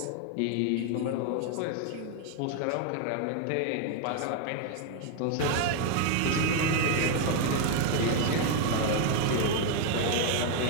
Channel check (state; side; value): different; both; correlation 0.01